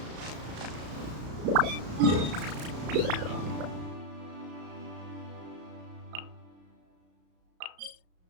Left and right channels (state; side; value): late; left; 34 ms